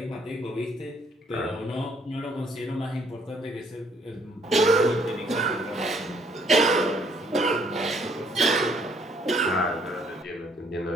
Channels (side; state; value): both; normal; correlation 0.65